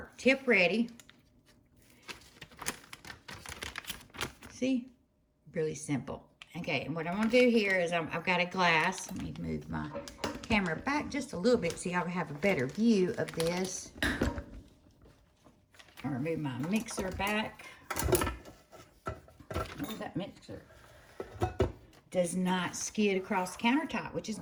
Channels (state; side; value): identical; both; correlation 1.00